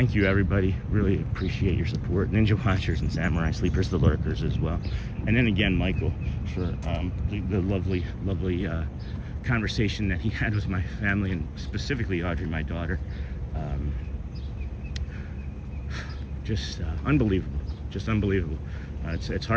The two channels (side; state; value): both; identical; correlation 1.00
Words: you, everybody. Really appreciate your support. Ninja Watchers and Samurai Sleepers, the lurkers as well. And then again, Michael, for the lovely conversation that he had with my family, and specifically Audrey, my daughter. Just unbelievable. Just unbelievable. It's